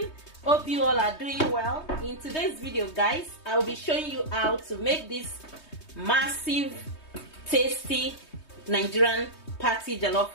Hope you all are doing well. In today's video guys, I will be showing you how to make this massive tasty Nigerian party jollof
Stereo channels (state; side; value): late; right; 3.2 ms